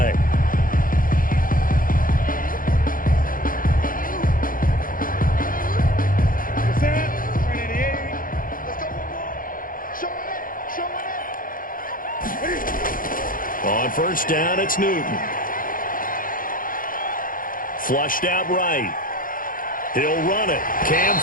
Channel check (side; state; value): right; late; 0.40 ms